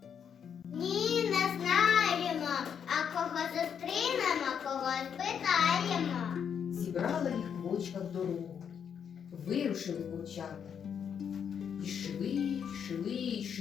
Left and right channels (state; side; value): quieter; right; 7.7 dB